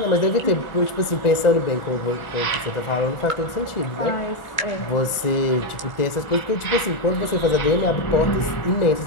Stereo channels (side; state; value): right; late; 1.4 ms